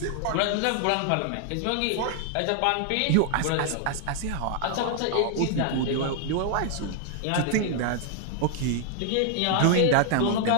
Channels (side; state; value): both; different; correlation 0.00